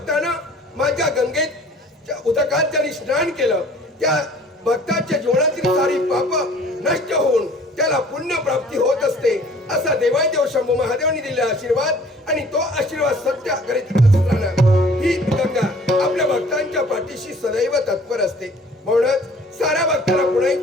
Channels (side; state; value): both; normal; correlation 0.52